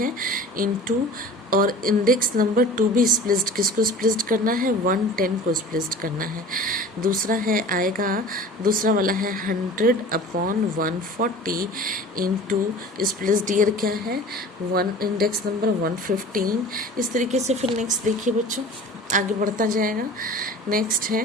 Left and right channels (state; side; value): normal; both; correlation 0.41